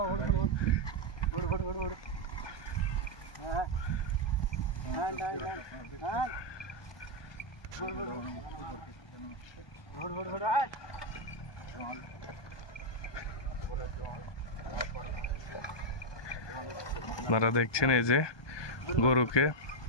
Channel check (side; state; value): right; late; 1.2 ms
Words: আপনারা দেখছেন এই যে গরুকে